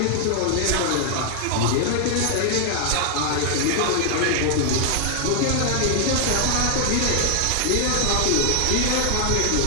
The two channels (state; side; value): different; both; correlation 0.00